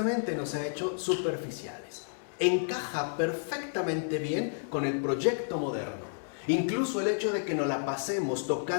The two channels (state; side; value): silent; right; 57 dB below the other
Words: nos ha hecho superficiales. Encaja perfectamente bien con el proyecto moderno. Incluso el hecho de que nos la pasemos